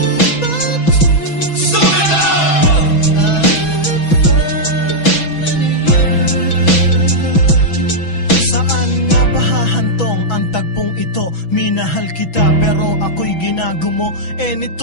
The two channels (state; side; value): late; right; 6.1 ms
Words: Minahal kita pero ako'y ginagumo. And it